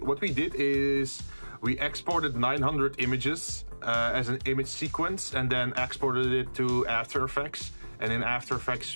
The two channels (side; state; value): both; inverted; correlation -1.00